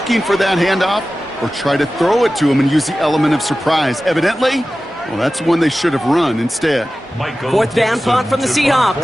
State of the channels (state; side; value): normal; both; correlation 0.95